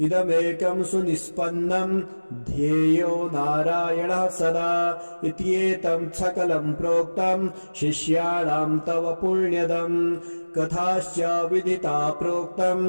इदमेकं सुनिष्पन्नं ध्येयो नारायणः सदा इत्येतं सकलं प्रोक्तं शिष्याणां तव पुण्यदम् कथाश्च विदिता प्रोक्तं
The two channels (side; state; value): both; inverted; correlation -1.00